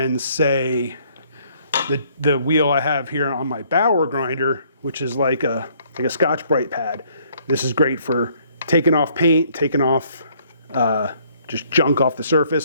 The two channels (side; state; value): both; inverted; correlation -0.64